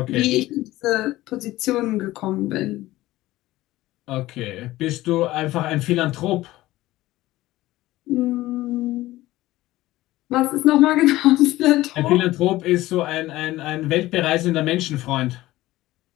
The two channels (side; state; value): right; quieter; 17.0 dB